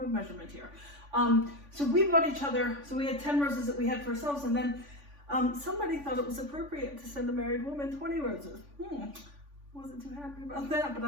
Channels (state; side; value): late; left; 3.5 ms